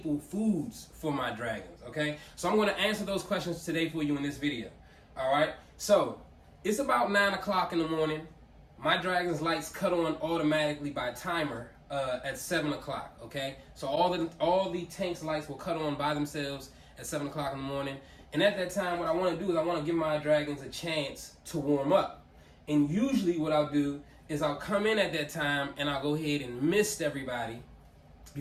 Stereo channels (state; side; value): identical; both; correlation 1.00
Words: foods for my dragons, okay? So I'm going to answer those questions today for you in this video, all right? So it's about 9 o'clock in the morning. My dragon's lights cut on automatically by timer at 7 o'clock, okay? So all the tank's lights will cut on by themselves at 7 o'clock in the morning. And at that time, what I want to do is I want to give my dragons a chance to warm up. And usually what I'll do is I'll come in at that time and I'll go ahead and mist everybody